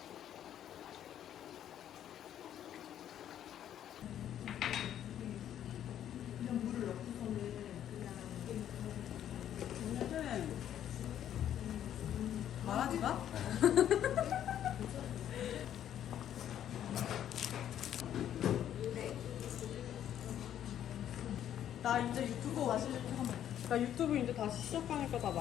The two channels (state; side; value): quieter; right; 10.6 dB